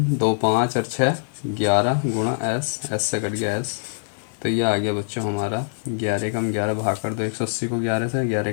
2 5 और 6 11 गुणा s से कट गया s। तो ये आ गया बच्चों हमारा 11 कम 11 भाग कर दो 180 को 11 से,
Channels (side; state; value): right; silent; digital silence